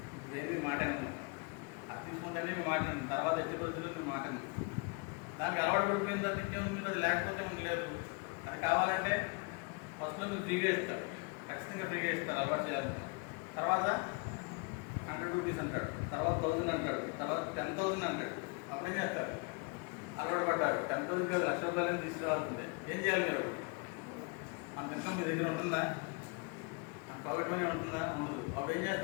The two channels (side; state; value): right; quieter; 32.0 dB